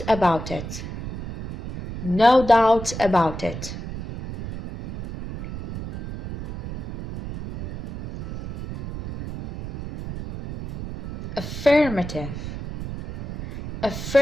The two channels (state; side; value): noise; right; rumble, 9 dB below the sound